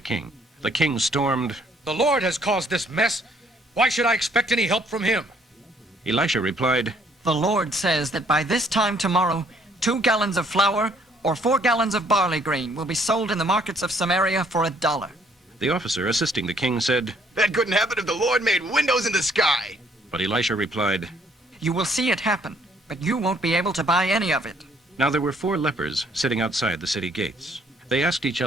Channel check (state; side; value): normal; both; correlation 0.64